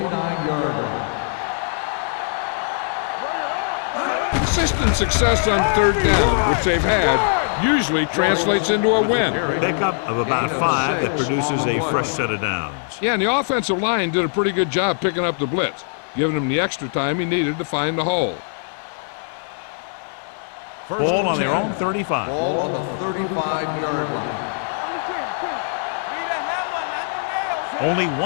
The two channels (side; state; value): right; silent; 58 dB below the other